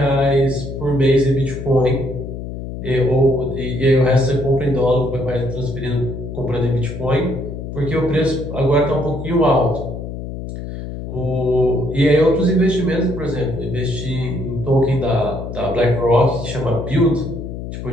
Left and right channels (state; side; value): noise; left; hum, 8 dB below the sound